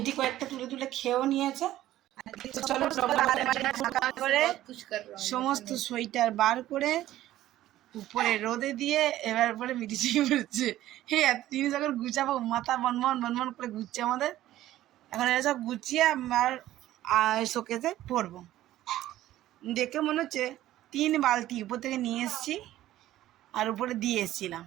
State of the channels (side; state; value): left; quieter; 14.1 dB